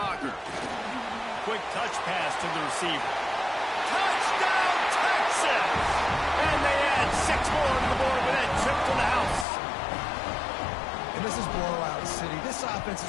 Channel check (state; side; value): drops out; right; at 9.5 s